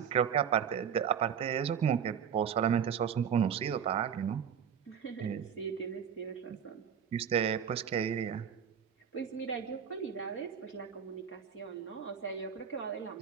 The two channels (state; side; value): quieter; left; 7.8 dB